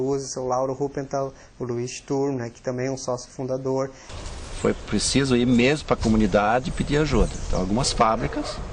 o seu Lauro Ruppenthal, o Luiz Sturm, né, que também é um sócio fundador. Foi preciso ir mesmo para a comunidade e pedir ajuda. Então, algumas fábricas,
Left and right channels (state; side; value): identical; both; correlation 1.00